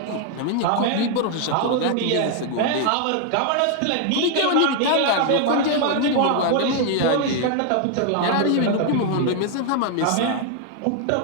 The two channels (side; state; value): both; different; correlation 0.00